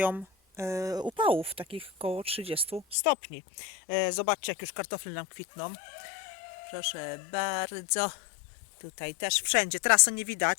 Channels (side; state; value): right; drops out; at 3.0 s